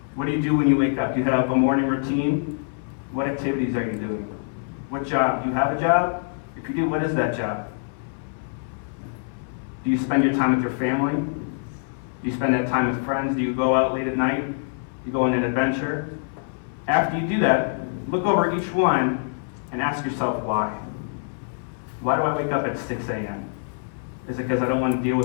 What do you do when you wake up? Do you have a morning routine? What activities are you doing? What job? Do you have a job? If you do, what is that job? Do you spend your time with your family? Do you spend that time with friends? Do you go out late at night? Do you go on an adventure? After you do that, look over each one and ask yourself why. Why do I wake up at 6 a.m.? Is it because I don't want to deal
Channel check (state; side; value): silent; right; 61 dB below the other